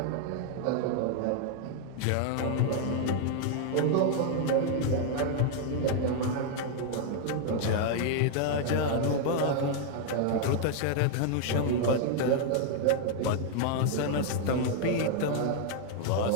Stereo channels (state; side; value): different; both; correlation 0.00